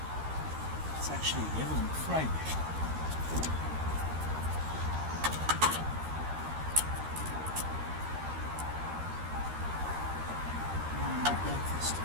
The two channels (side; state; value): left; late; 13 ms